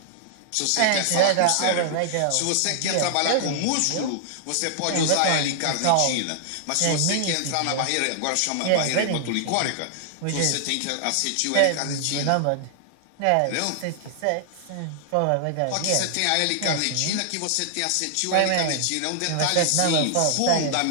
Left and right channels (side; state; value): both; different; correlation 0.00